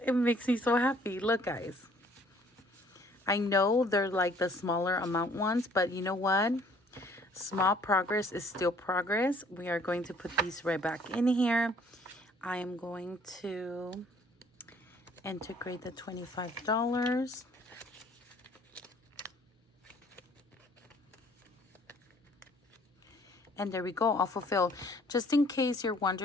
it makes me so happy. Look, guys. I know they're like the smaller amount ones, but you know what? Small progress is still progress. We are going to put these right back in here. I am going to integrate the $25. And there we go, all fulfilled. Just in case you're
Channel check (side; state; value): both; normal; correlation 0.58